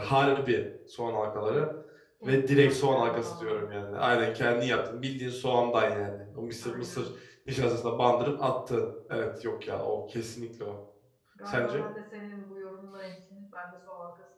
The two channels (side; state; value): both; identical; correlation 1.00